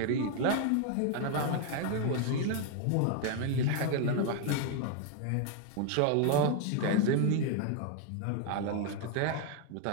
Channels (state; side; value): different; both; correlation 0.00